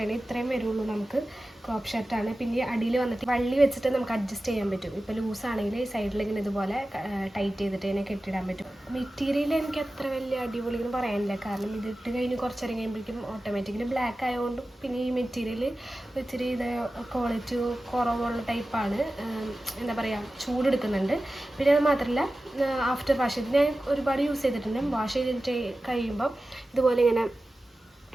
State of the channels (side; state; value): both; normal; correlation 0.95